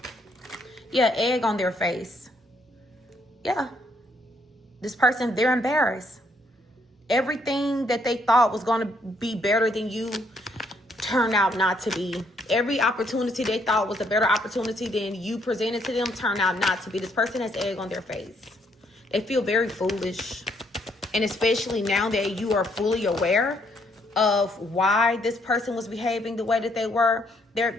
Yeah, egg on their face. Yeah. This person, they're embarrassed. Everything that they thought was going to be better than you turned out not to be. Every opportunity they thought was a better opportunity than you presented to them turned out not to be. This person has egg on their face. They feel very foolish. And especially now that you are fully aware of why this person was behaving the way that they were,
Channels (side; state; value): both; normal; correlation 0.70